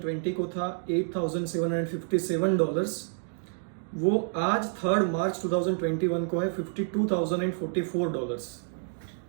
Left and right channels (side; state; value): left; silent; digital silence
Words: को था $8,757, वो आज 3 मार्च 2021 को है $52,044।